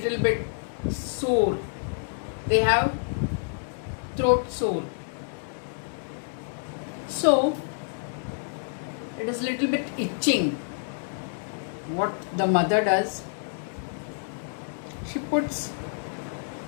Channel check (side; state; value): right; silent; digital silence